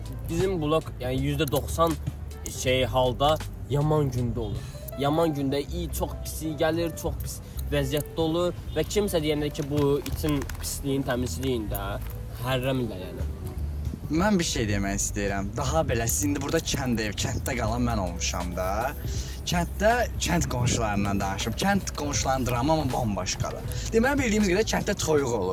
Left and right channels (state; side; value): identical; both; correlation 1.00